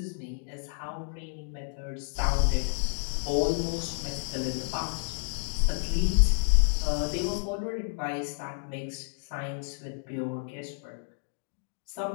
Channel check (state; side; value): silent; right; digital silence